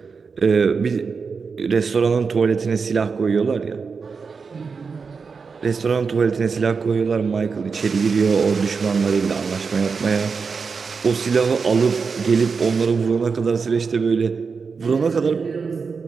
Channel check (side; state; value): left; quieter; 5.2 dB